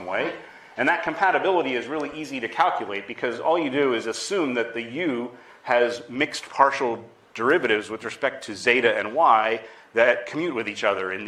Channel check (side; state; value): both; identical; correlation 1.00